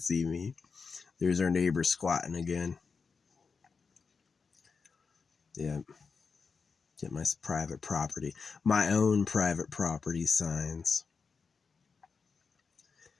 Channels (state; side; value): quieter; right; 5.1 dB